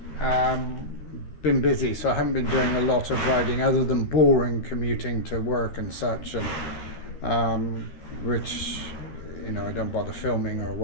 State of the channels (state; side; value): late; right; 12 ms